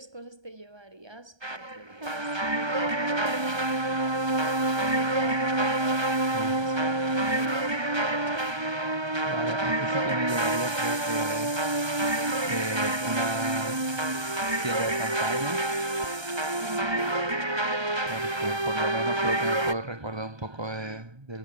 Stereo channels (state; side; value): late; left; 1.3 ms